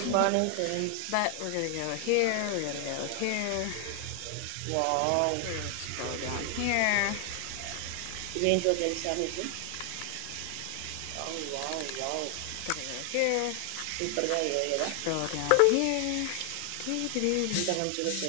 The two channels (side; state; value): both; different; correlation 0.00